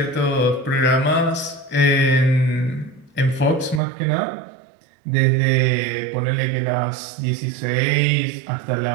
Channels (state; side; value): drops out; left; at 3.8 s